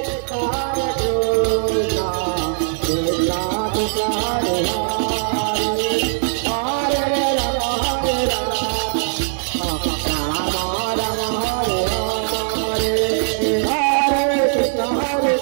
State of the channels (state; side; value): silent; left; digital silence